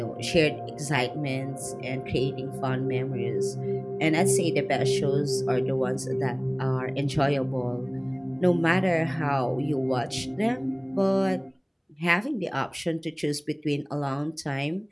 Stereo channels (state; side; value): identical; both; correlation 1.00